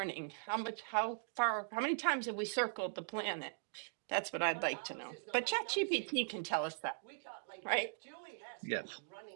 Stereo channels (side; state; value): left; silent; digital silence